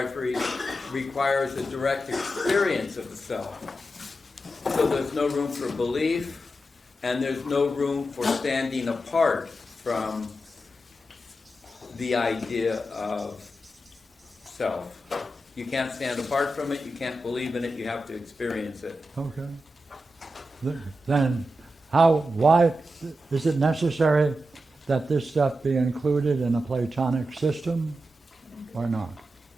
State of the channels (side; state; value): both; normal; correlation 0.89